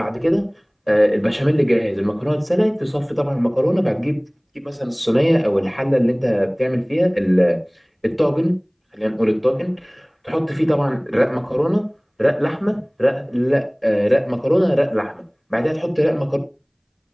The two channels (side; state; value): both; identical; correlation 1.00